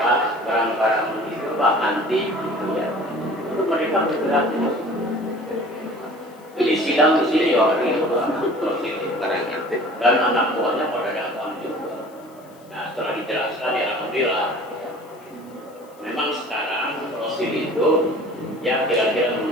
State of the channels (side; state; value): left; noise; hiss, 29 dB below the sound